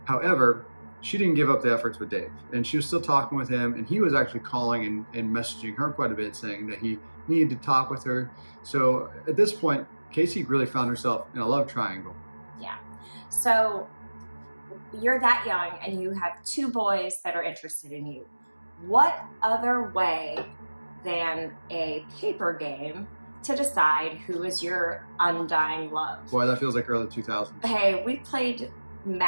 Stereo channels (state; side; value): inverted; both; correlation -1.00